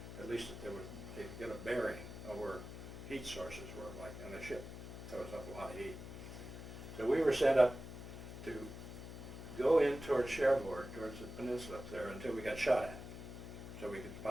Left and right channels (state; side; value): noise; left; hum, 10 dB below the sound